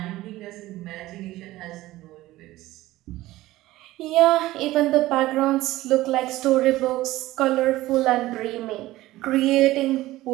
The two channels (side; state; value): left; quieter; 16.9 dB